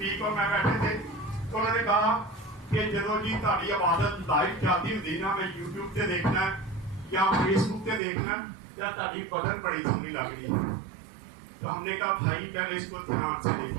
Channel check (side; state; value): left; drops out; at 8.0 s